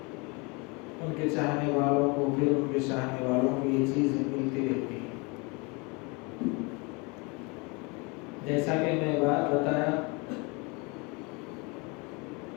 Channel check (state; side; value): quieter; right; 29.1 dB